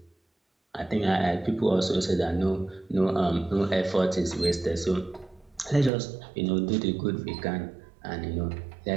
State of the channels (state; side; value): drops out; left; at 5.9 s